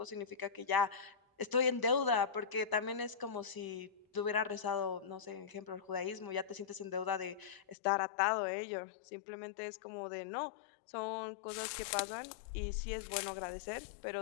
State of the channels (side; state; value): right; drops out; at 7.8 s